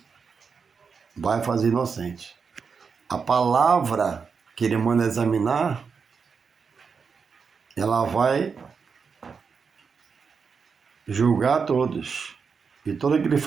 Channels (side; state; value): left; quieter; 5.6 dB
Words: vai fazer inocente. A palavra que ele manda examinar, ela vai julgar todos. E todo aquele